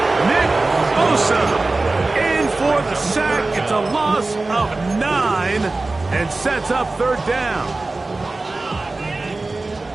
Nick Bosa in for the sack. It's a loss of 9 and sets up 3rd down.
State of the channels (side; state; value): left; quieter; 3.3 dB